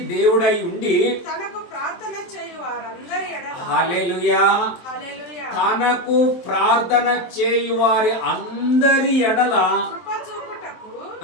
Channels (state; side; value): late; right; 23 ms